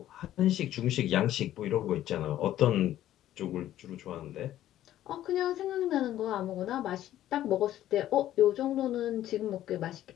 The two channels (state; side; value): quieter; right; 12.9 dB